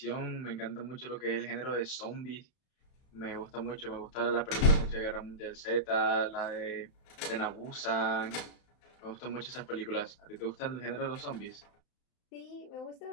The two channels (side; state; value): right; late; 31 ms